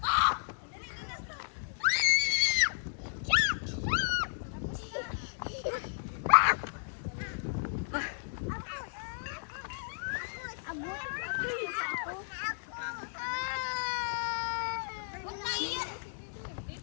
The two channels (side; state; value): right; silent; digital silence